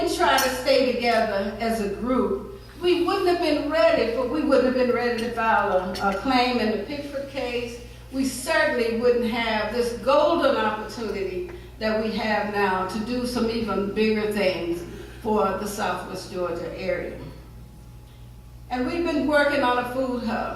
try to stay together as a group. We wouldn't have been ready, we wouldn't have been ready to file a claim in the Pickford case. We certainly wouldn't have this golden opportunity that we have now to do some even bigger things for the Southwest Georgia area. And we've been working on a food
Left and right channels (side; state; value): both; identical; correlation 1.00